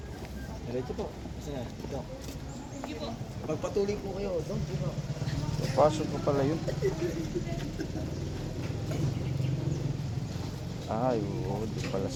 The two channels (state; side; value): identical; both; correlation 1.00